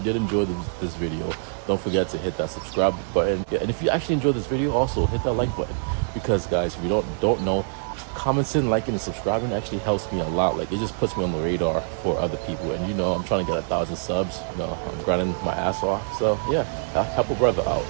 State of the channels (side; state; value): left; silent; 58 dB below the other